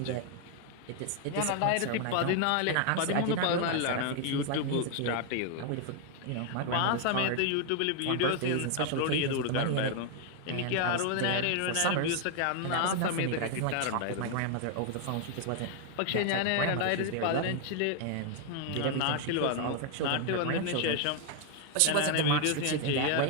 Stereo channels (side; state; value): both; different; correlation 0.00